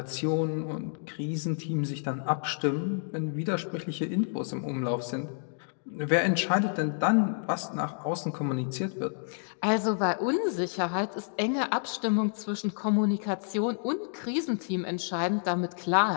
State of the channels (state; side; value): silent; right; digital silence